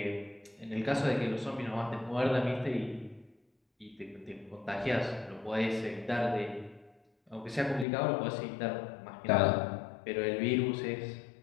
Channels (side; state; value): right; drops out; at 7.9 s